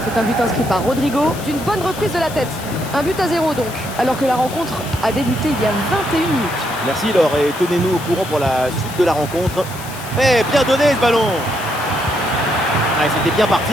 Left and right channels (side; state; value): left; noise; hiss, 14 dB below the sound